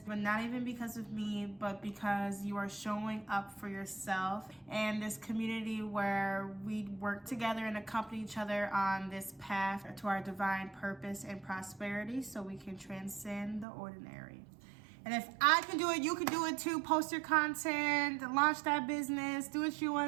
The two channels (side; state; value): left; drops out; at 13.7 s